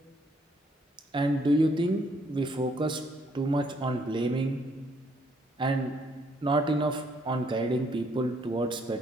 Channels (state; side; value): normal; both; correlation 0.68